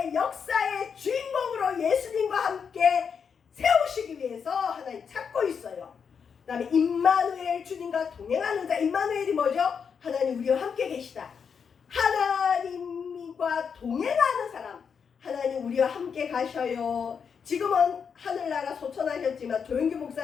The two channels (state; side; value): quieter; right; 6.5 dB